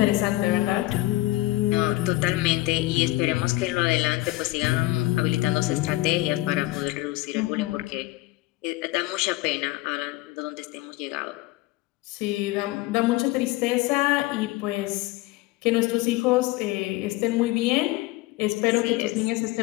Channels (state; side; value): quieter; right; 18.7 dB